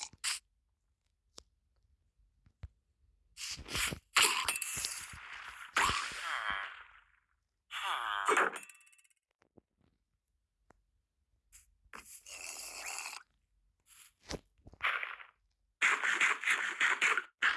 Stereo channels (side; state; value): both; identical; correlation 1.00